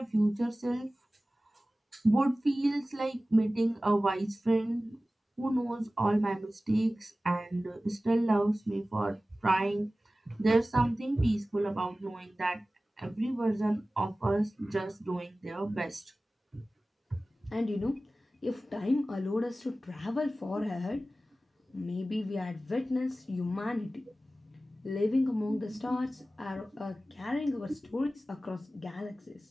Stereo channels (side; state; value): both; normal; correlation 0.96